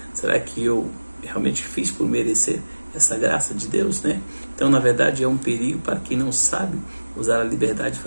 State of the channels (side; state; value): both; inverted; correlation -1.00